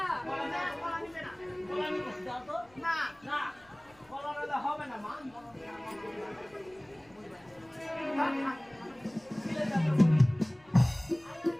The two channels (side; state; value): left; noise; rumble, 29 dB below the sound